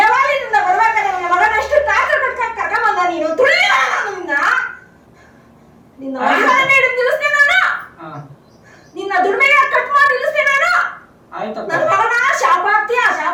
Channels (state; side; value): identical; both; correlation 1.00